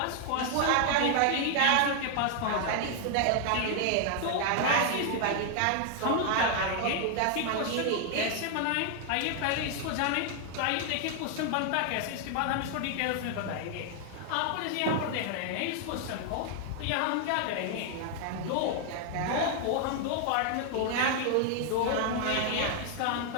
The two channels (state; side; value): different; both; correlation 0.00